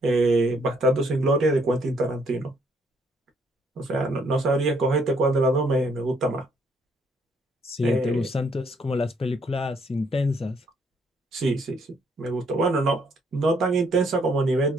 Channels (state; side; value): normal; both; correlation 0.69